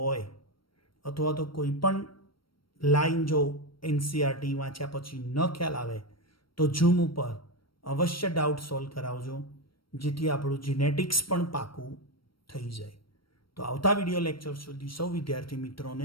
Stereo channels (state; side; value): late; right; 0.74 ms